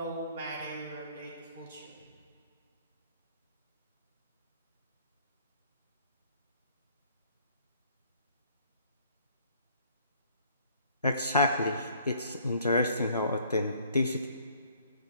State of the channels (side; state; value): both; inverted; correlation -0.60